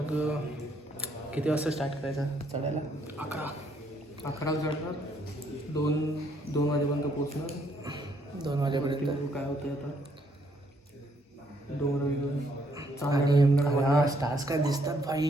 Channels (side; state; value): both; normal; correlation 0.70